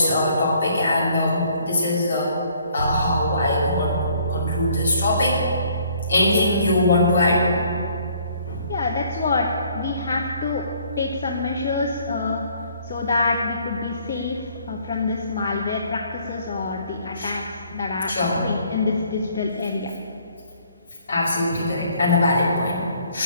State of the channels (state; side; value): inverted; both; correlation -0.61